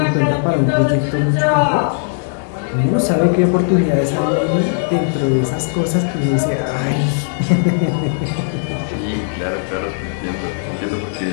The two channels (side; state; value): right; silent; digital silence